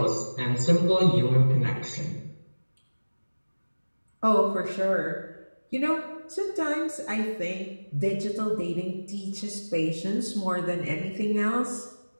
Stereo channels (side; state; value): both; inverted; correlation -1.00